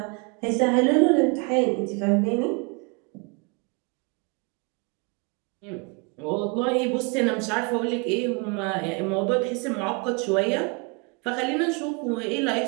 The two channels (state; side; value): quieter; left; 32.0 dB